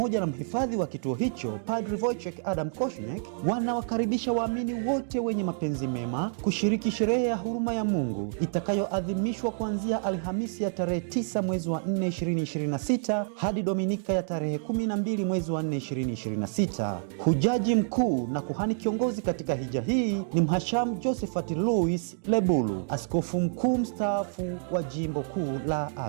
na mhifadhi wa kituo hicho Padre Wojciech Adam Kośniak, wanawakaribisha waamini wote wenye mapenzi mema kushiriki sherehe ya huruma ya Mungu itakayoadhimishwa kuanzia Alhamisi ya tarehe 9 mwezi wa 4 2026 hadi Dominika ya tarehe 12 mwezi wa 4 2026. Hujaji mkuu na kuhani kiongozi katika hija hii ni Mhashamu Josephat Louis Lebulu, askofu mkuu mstaafu wa Jimbo Kuu la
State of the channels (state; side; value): silent; left; digital silence